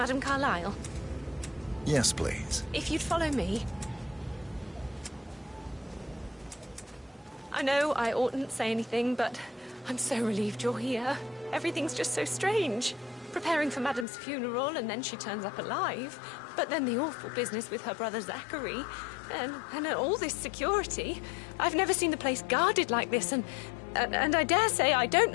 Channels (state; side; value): drops out; right; at 14.1 s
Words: Carlyle? Yes, please. If you'd follow me. I know I oughtn't say anything, but I'm so relieved you're here. Everything's just so strange. Preparing for Madame's funeral, and then she turns up alive. But then the awful business with her brother Zachary, and all this security. I've never seen the place guarded like this, and I dare say I don't